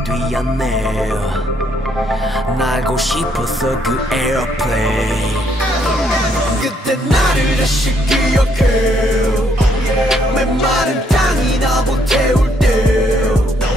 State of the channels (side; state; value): both; normal; correlation 0.71